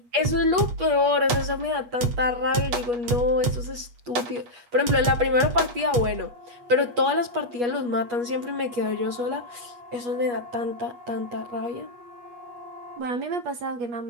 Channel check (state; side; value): late; left; 8.3 ms